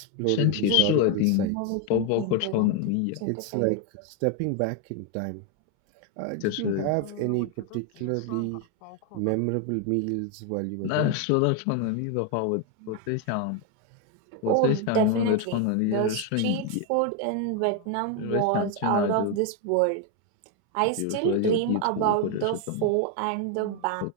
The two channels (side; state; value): both; different; correlation 0.01